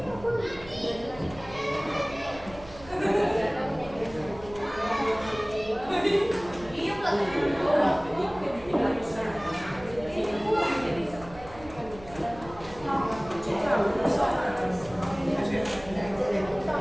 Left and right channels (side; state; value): right; noise; hum, 18 dB below the sound